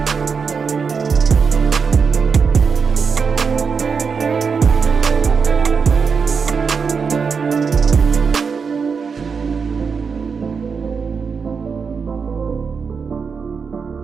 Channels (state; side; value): quieter; left; 5.7 dB